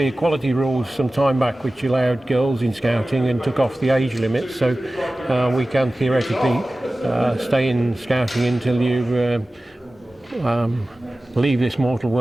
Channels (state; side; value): normal; both; correlation 0.96